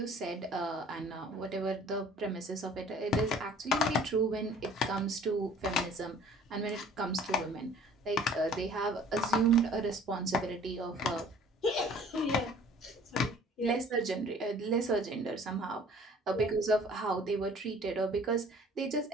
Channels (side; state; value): both; normal; correlation 0.51